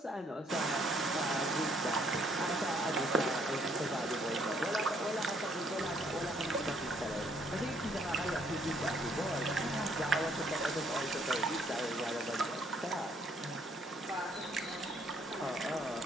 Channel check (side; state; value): both; normal; correlation 0.66